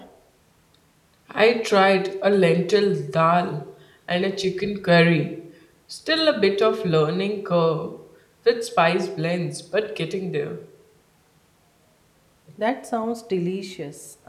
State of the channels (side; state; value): both; identical; correlation 1.00